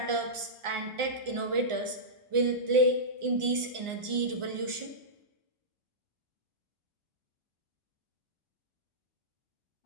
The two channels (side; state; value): left; late; 1.4 ms